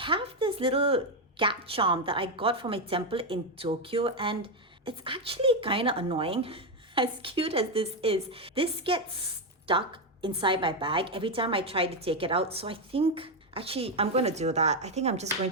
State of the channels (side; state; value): both; normal; correlation 0.06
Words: this little cat charm that I got from a temple in Tokyo, and it's actually kind of annoying. As cute as this is, this gets stuck inside my bag every time I try to take it out. So I think actually I'm going to do that. I think I'm just going